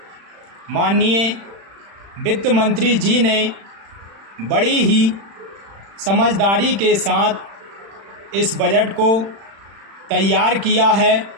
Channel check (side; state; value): left; late; 36 ms